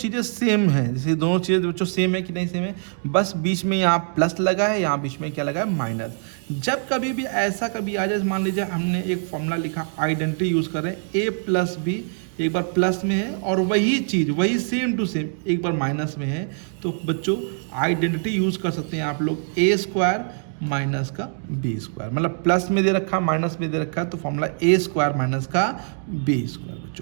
सेम हैं, जैसे दोनों चीज़ें बच्चों सेम है कि नहीं सेम है, बस बीच में यहाँ प्लस लगा है, यहाँ बीच में क्या लगा है, माइनस। जब कभी भी ऐसा कभी आ जाए, मान लीजिए हमने एक फॉर्मूला लिखा, आइडेंटिटी यूज़ कर रहे हैं, a प्लस बी, एक बार प्लस में है और वही चीज़ वही सेम टू सेम एक बार माइनस में है, तो बच्चों आइडेंटिटी यूज़ कर सकते हैं आप लोग, ए स्क्वायर माइनस का बी स्क्वायर, मतलब प्लस में दे रखा माइनस में दे रखा है, तो फॉर्मूला ए स्क्वायर माइनस का बी स्क्वायर।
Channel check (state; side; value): silent; left; digital silence